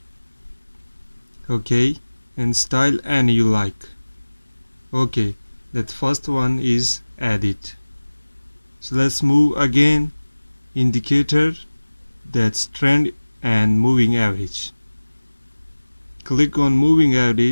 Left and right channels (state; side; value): inverted; both; correlation -1.00